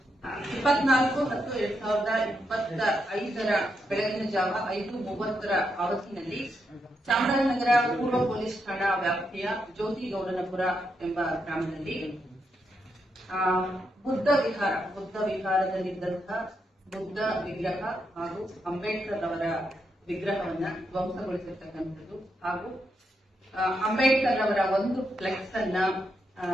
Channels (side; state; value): both; normal; correlation 0.82